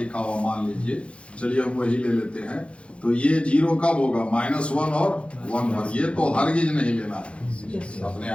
हुआ, मान लीजिए, चलिए हम वही ले लेते हैं, तो ये 0 कब होगा, -1 और 1 पर। ये तो हरगिज नहीं लेना है अपने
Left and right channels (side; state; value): right; late; 0.060 ms